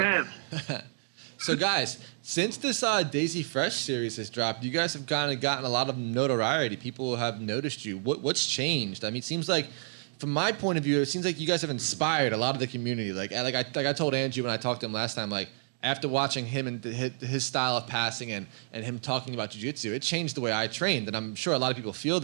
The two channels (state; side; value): silent; left; digital silence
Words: him. So, guys, since this Daisy Fresh series has dropped, you guys have kind of gotten a lot of notoriety. People have noticed you. What's changed? I mean, it seems like, from my point of view, it seems like you guys have inspired a lot of the community. Like I told Andrew when I talked to him last time, like, after watching him and his style of passing and him talking about jiu-jitsu, it changed the way I trained, and I'm sure a lot of people feel